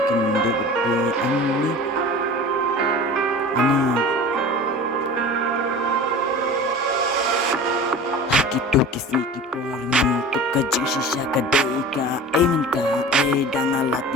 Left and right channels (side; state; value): both; normal; correlation 0.37